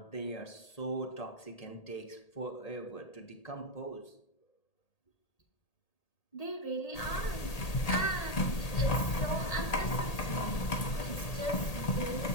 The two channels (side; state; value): right; late; 1.8 ms